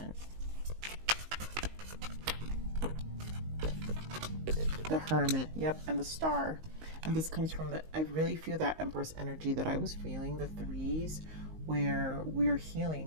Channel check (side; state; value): left; late; 19 ms